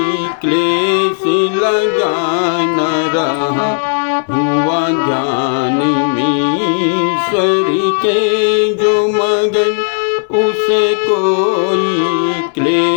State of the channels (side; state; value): right; silent; digital silence